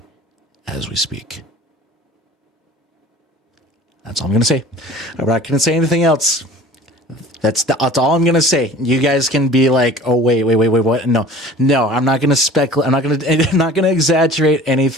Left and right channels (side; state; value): both; normal; correlation 0.44